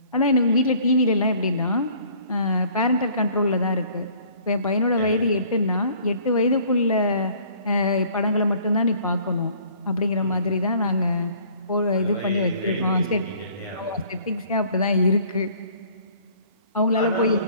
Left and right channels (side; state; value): both; inverted; correlation -0.55